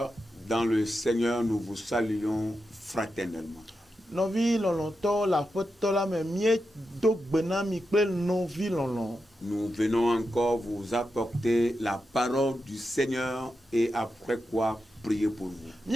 dans le Seigneur, nous vous saluons fraternellement. Novi lolonto la foto la me mie do gbena mi pe novi lolon. Nous venons encore vous apporter la parole du Seigneur et après quoi prier pour vous.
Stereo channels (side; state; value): both; normal; correlation 0.88